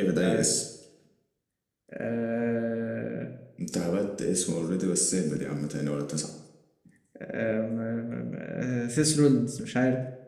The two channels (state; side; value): identical; both; correlation 1.00